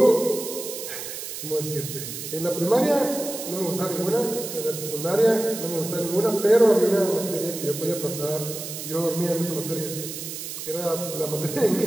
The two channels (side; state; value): right; noise; hiss, 8 dB below the sound